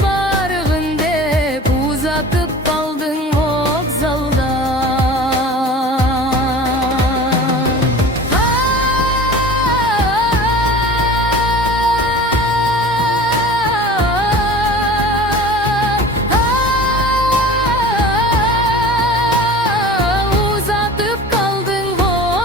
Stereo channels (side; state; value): both; normal; correlation 0.39